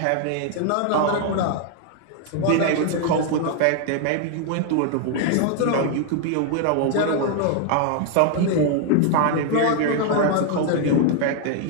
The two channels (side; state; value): both; different; correlation 0.00